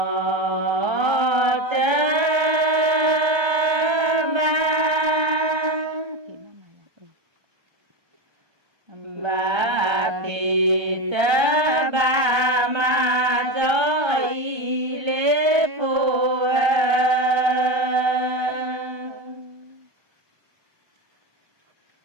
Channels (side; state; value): left; late; 1.3 ms